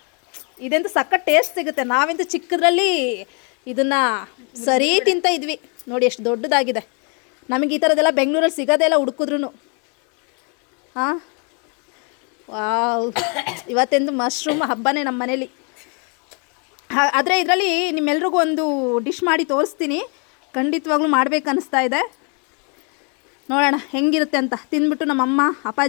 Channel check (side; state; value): right; quieter; 36.2 dB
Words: ಇದಂತೂ ಸಖತ್ ಟೇಸ್ಟ್ ಸಿಗುತ್ತೆ. ನಾವಂತೂ ಚಿಕ್ಕದ್ರಲ್ಲಿ ಇದನ್ನು ಸರಿ ತಿಂತ ಇದ್ವಿ. ನೋಡಿ ಎಷ್ಟು ದೊಡ್ಡದಾಗಿದೆ. ನಮಗೆ ಈ ಥರದ್ದೆಲ್ಲ ಬೆಂಗಳೂರಲ್ಲಿ ಸಿಗೋದೇ ಇಲ್ಲ ಹುಡುಕಿದ್ರು. ಹಾಂ, ವಾವ್, ಇವತ್ತೆಂದು ಮಶ್ರೂಮ್ ಹಬ್ಬನೇ ನಮ್ಮ ಮನೇಲಿ. ಆದರೆ ಇದರಲ್ಲಿ ನಿಮ್ಮೆಲ್ರಿಗೂ ಒಂದು ಡಿಶ್ ಮಾಡಿ ತೋರಿಸ್ತೀನಿ. ಖಂಡಿತವಾಗ್ಲೂ ಮಾಡಬೇಕನ್ನಿಸ್ತಾ ಇದೆ. ನೋಡೋಣ ಹೆಂಗಿರುತ್ತೆ ಅಂತ. ತಿಂದ್ಬಿಟ್ಟು ನಮ್ಮಮ್ಮ